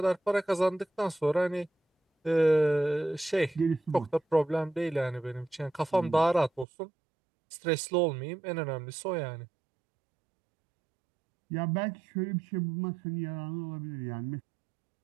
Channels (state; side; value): drops out; left; at 6.7 s